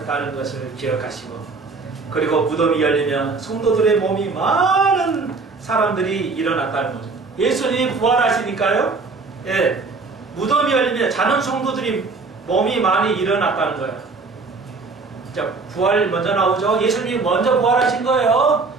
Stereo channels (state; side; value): quieter; left; 4.2 dB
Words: 것을 기억하시고, 그리고 무덤이 열리면 성도들의 몸이 많은 사람들이 일어났다는 거죠. 예수님이 부활하시니까요. 무덤이 열리면 자는 성도들이 몸이 많이 일어났다는 거예요. 자, 부활 먼저 나오죠. 예수님이 먼저 부활하신 거예요.